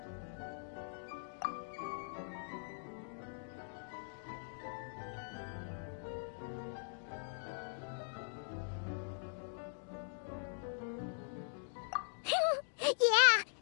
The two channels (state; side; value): silent; right; digital silence